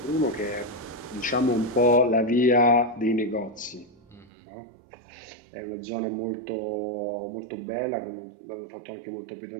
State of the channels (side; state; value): left; drops out; at 4.3 s